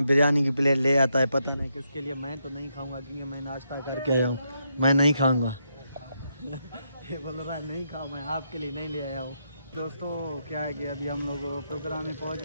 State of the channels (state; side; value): inverted; both; correlation -0.80